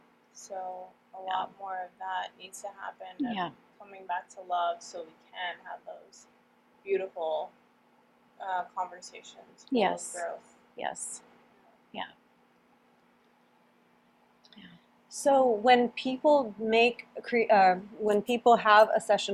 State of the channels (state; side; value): identical; both; correlation 1.00